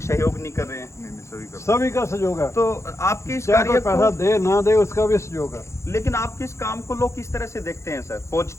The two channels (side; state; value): right; late; 0.14 ms